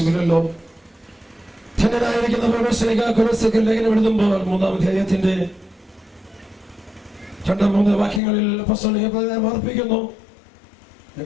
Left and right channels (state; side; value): drops out; right; at 8.2 s